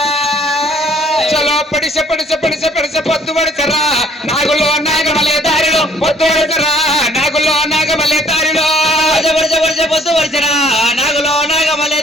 చలో పడిసె పొద్దు పడిసరా నాగులో నాగమలే దారిలో పొద్దు పడిసరా నాగులో నాగమలే దారిలో పొద్దు పడిసరా నాగులో నాగమలే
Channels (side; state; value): both; normal; correlation 0.59